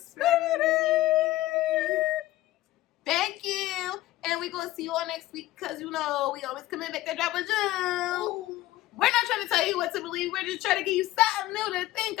Thank you. And we're going to see you all next week because, you know, we always come in back to drop a jewel. We're not trying to tell you what to believe. We're just trying to give you something new to think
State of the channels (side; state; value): right; quieter; 16.2 dB